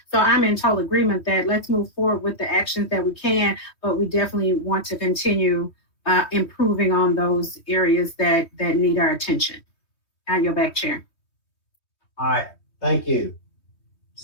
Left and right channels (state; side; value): late; right; 3.2 ms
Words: So I'm in total agreement that let's move forward with the actions that we can, but we definitely want to continue improving on those areas that need our attention. I yield back, Chair. All right. Thank you.